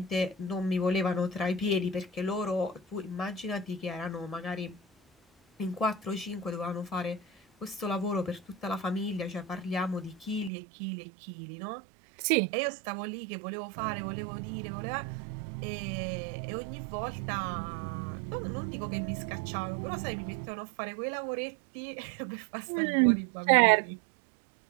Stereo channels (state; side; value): drops out; left; at 10.5 s